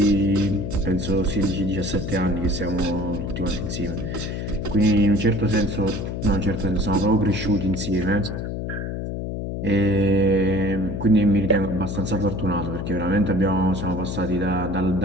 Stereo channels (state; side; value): noise; left; hum, 4 dB below the sound